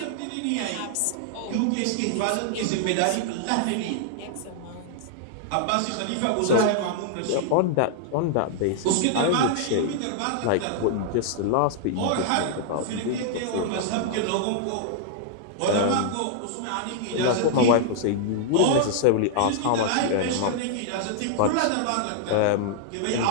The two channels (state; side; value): different; both; correlation -0.01